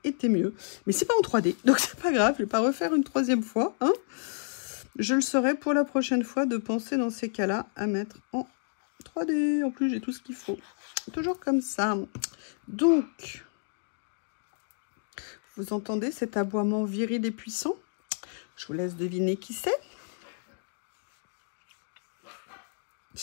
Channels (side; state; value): right; silent; digital silence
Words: été mieux. Mais c'est pas en 3D, donc c'est pas grave. Je vais pas refaire une troisième fois, hein. Je le saurai pour la prochaine fois de penser dans ces cas-là à mettre en 3D. En plus, j'ai tout ce qu'il faut. Toujours comme ça. Donc, vous entendez cet aboiement viril et puissant? Je vous laisse deviner qui c'est.